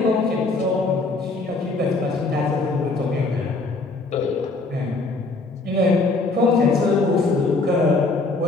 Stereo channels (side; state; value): right; quieter; 3.5 dB